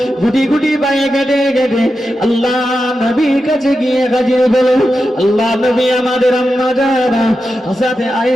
গুটি গুটি পায়ে কেটে কেটে আল্লাহ নবীর কাছে গিয়ে হাজির হলো। আল্লাহ নবী আমাদের আম্মা জানা হযরত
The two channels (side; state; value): both; normal; correlation 0.89